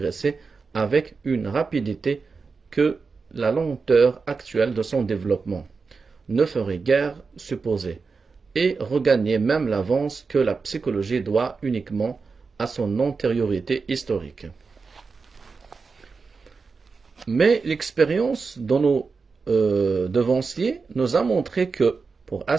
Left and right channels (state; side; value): quieter; left; 4.7 dB